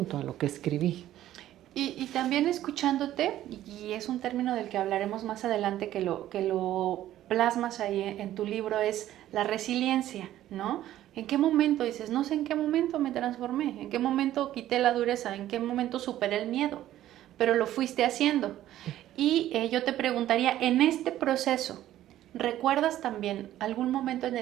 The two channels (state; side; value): quieter; left; 13.2 dB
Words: a lo que escribí. Y también escuchándote, y es un término del que hablaremos más adelante, que lo plasmas ahí en tu libro, es la resiliencia, ¿no? ¿En qué momento dices, no sé en qué momento me transformé, en qué momento quité la dureza, en qué momento superé el miedo, pero lo fuiste haciendo? Y yo te preguntaría, en este proceso, ¿recuerdas también algún momento en